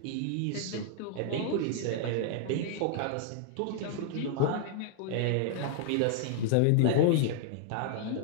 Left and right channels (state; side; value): different; both; correlation -0.01